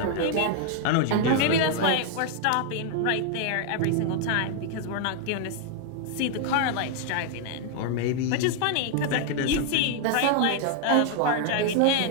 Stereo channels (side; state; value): both; different; correlation 0.00